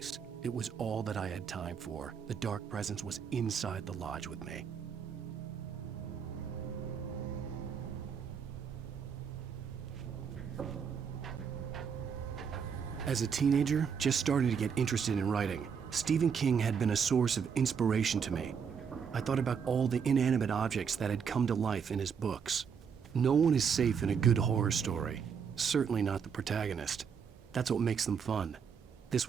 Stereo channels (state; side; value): quieter; left; 6.8 dB